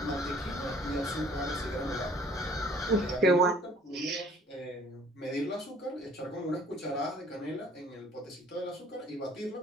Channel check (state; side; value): normal; both; correlation 0.54